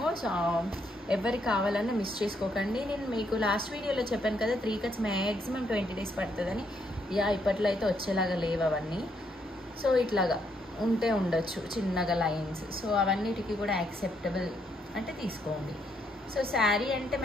సో ఎవరికి కావాలన్నా మిస్ చేసుకోకండి. నేను మీకు లాస్ట్ వీడియోలో చెప్పాను కదా, 3 కట్స్ మ్యాక్సిమం 20 days పడుతుందని. ఇప్పట్లో అయితే వచ్చేలాగా లేవు అవన్నీ. సో ఇట్లాగా ఉంటే ఉండొచ్చు చిన్నగా లైన్స్. సో అవన్నిటికీ కూడా యాక్సెప్టబుల్ అంటే తీసుకోండి. సో శారీ అంటే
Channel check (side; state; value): both; normal; correlation 0.74